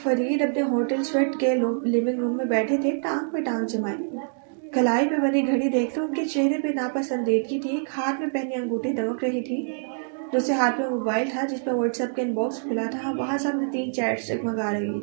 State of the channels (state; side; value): silent; left; digital silence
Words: اپنے ہوٹل سویٹ کے لیونگ روم میں بیٹھے تھے، ٹانگ پہ ٹانگ جمائے۔ کلائی پہ بنی گھڑی دیکھتے ان کے چہرے پہ ناپسندیدگی تھی۔ ایک ہاتھ میں پہنی انگوٹھی دمک رہی تھی، دوسرے ہاتھ میں موبائل تھا جس پہ واٹس ایپ کا ان باکس کھلا تھا، وہاں سامنے 3 چیٹس جگمگا